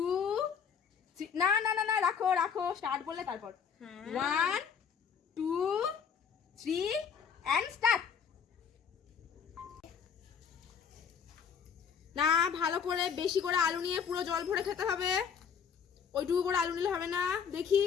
3। না না না না, রাখো রাখো, স্টার্ট বললে তারপর। 1, 2, 3 এন্ড স্টার্ট। না, ভালো করে বেশি করে আলু নিয়ে পুরো জল ভরে খেতে হবে। ওইটুকু করে আলু নিলে হবে না, দেখি।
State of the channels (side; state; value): right; quieter; 7.0 dB